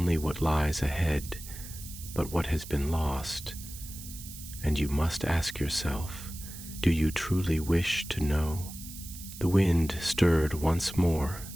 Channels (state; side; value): noise; right; hiss, 13 dB below the sound